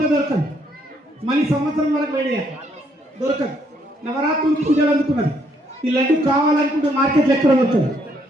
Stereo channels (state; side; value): normal; both; correlation 0.70